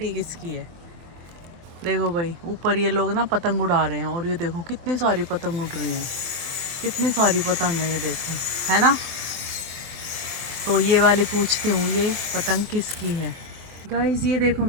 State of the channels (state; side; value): late; left; 24 ms